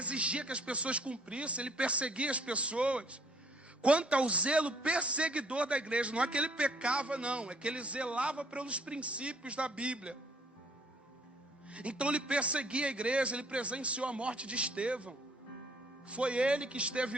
que as pessoas cumprissem, ele perseguia as pessoas. Quanto ao zelo perseguidor da igreja, não é que ele pecava, não, é que ele zelava pelos princípios da Bíblia. Então ele perseguia a igreja, ele presenciou a morte de Estevão. Foi ele que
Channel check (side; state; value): both; normal; correlation 0.62